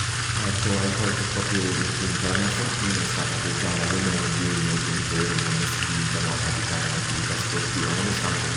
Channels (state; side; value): identical; both; correlation 1.00